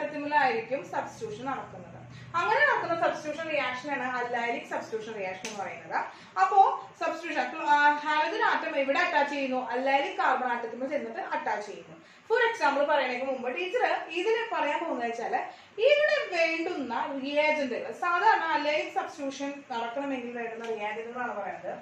സബ്സ്റ്റിറ്റ്യൂഷൻ നടക്കുന്നത്. അങ്ങനെ നടക്കുന്ന സബ്സ്റ്റിറ്റ്യൂഷൻ റിയാക്ഷനാണ് അല്ലൈലിക് സബ്സ്റ്റിറ്റ്യൂഷൻ റിയാക്ഷൻ എന്ന് പറയുന്നത്. അപ്പോ സബ്സ്റ്റിറ്റ്യൂഷൻ ഹാലജൻ ആറ്റം എവിടെ അറ്റാച്ച് ചെയ്യുന്നു? അല്ലൈലിക് കാർബൺ ആറ്റത്തിൽ ചെന്നിട്ട് അറ്റാച്ച് ചെയ്യുന്നു. ഫോർ എക്സാമ്പിൾ പറയുന്നതിന് മുമ്പ് ടീച്ചർ ഇതിന് പറയാൻ പോകുന്നത് വെച്ചാല് ഇവിടെ വേണ്ടുന്ന റിയാജന്റുകൾ, സാധാരണ അല്ലൈലിക് സബ്സ്റ്റിറ്റ്യൂഷൻ നടക്കണമെങ്കിൽ വേണ്ടുന്ന റിയാജന്റുകളാണ് പറയുന്നത്.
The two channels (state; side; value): identical; both; correlation 1.00